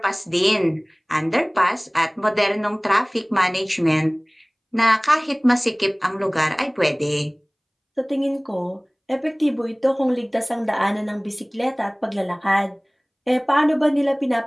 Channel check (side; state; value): both; identical; correlation 1.00